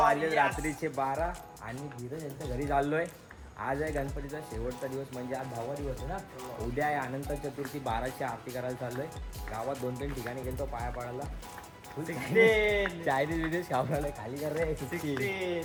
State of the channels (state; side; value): identical; both; correlation 1.00